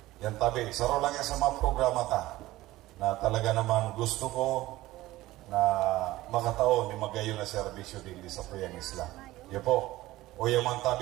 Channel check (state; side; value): quieter; left; 17.3 dB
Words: Yan, Tabi. Saro lang yan sa mga programa ta na talaga naman gusto ko na makataon ni magayon na serbisyo din sa Puyang Isla. Yan po. O yaman,